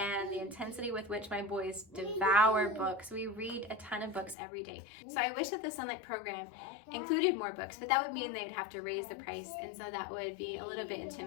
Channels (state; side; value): drops out; right; at 4.4 s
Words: the intensity with which my boys devour books. We read a ton of books every day. So I wish that the Sonlight program included more books, but that would mean they'd have to raise the price, and so that would be a little bit